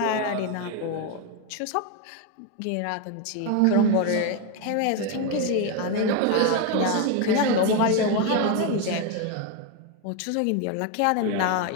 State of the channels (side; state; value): both; different; correlation 0.02